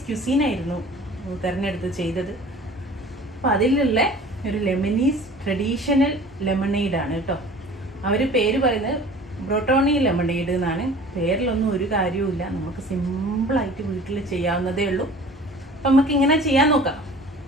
ക്യുസീനായിരുന്നു തിരഞ്ഞെടുത്ത് ചെയ്തത്. അപ്പോൾ അതിലുള്ള ഒരു ലെബനീസ് ട്രഡീഷണൽ ലെമണേഡാണ് കേട്ടോ. അവർ പേര് പറയുന്നത് ബ്രോട്ടോണി ലെമണേഡ് എന്നാണ്. പേരിലൊന്നും ഒരു കാര്യവുമില്ല, നമുക്ക് സിമ്പിളായിട്ട് വീട്ടിൽ ചെയ്യാവുന്നതേ ഉള്ളൂ. അപ്പം നമുക്ക് ഇങ്ങനെ ചെയ്യാൻ നോക്കാം.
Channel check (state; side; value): normal; both; correlation 0.44